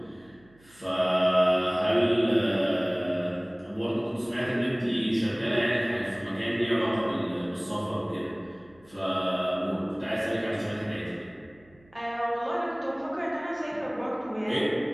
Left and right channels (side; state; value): right; noise; hum, 29 dB below the sound